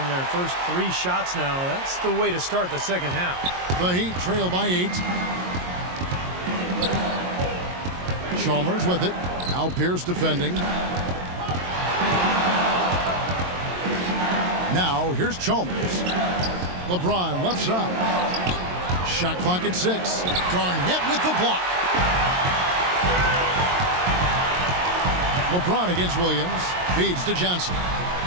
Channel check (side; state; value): left; late; 22 ms